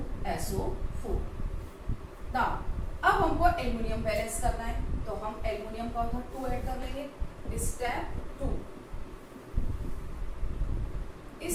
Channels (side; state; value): both; identical; correlation 1.00